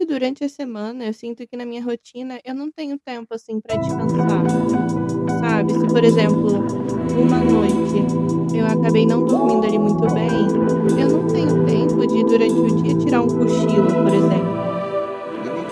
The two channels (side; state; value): both; identical; correlation 1.00